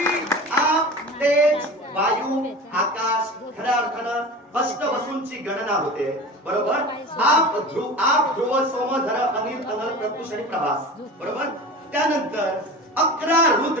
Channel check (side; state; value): both; normal; correlation 0.34